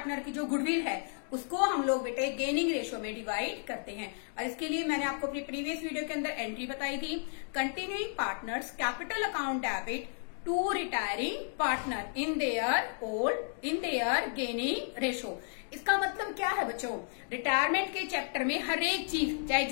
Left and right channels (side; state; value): right; silent; 56 dB below the other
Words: की जो गुडविल है उसको हम लोग बेटे गेनिंग रेशियो में डिवाइड करते हैं. और इसके लिए मैंने आपको अपनी प्रीवियस वीडियो के अंदर एंट्री बताई थी. Continuing partners capital account debit to retiring partner in their gaining ratio. इसका मतलब क्या है बच्चों, रिटायरमेंट के चैप्टर में हर एक चीज, चाहे